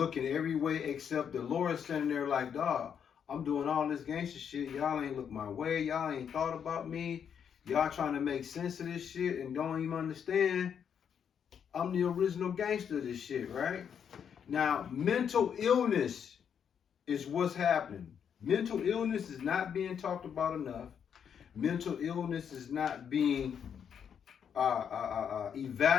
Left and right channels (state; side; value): quieter; right; 7.9 dB